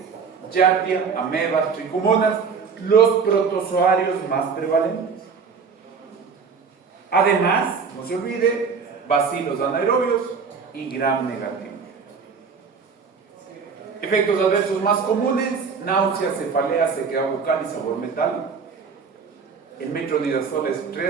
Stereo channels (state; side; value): quieter; left; 5.6 dB